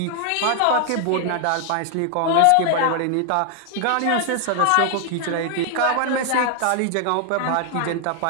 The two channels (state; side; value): different; both; correlation 0.00